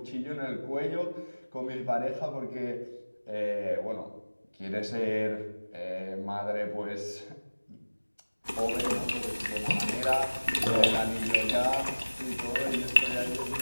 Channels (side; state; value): both; inverted; correlation -1.00